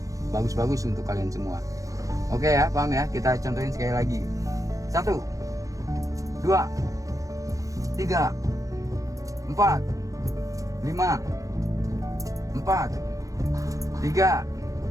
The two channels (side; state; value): left; late; 0.16 ms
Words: bagus-bagus untuk kalian semua. Oke ya, paham ya? Kita contohin sekali lagi. 1, 2, 3, 4, 5, 4, 3,